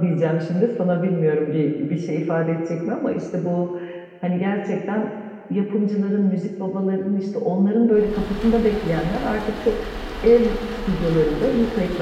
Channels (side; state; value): both; identical; correlation 1.00